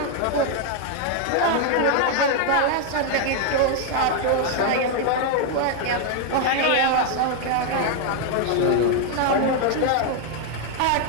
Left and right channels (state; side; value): different; both; correlation 0.00